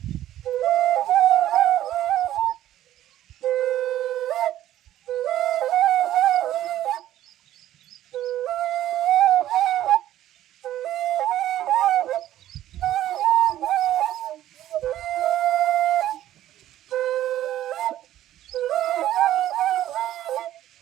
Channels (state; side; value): quieter; left; 13.0 dB